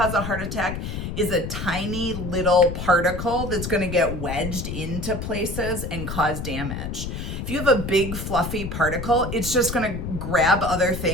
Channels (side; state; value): left; noise; rumble, 5 dB below the sound